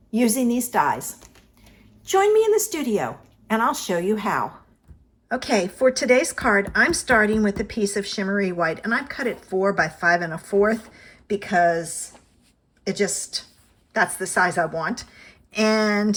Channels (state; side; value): identical; both; correlation 1.00